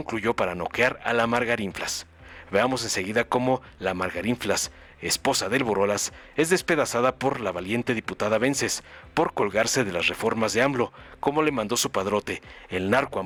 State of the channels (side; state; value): both; identical; correlation 1.00